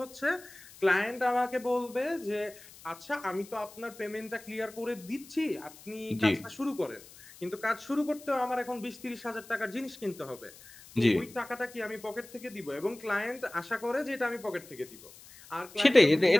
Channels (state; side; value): noise; left; hiss, 20 dB below the sound